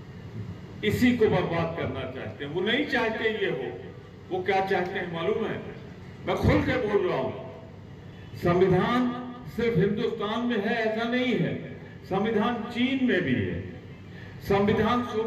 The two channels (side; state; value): both; identical; correlation 1.00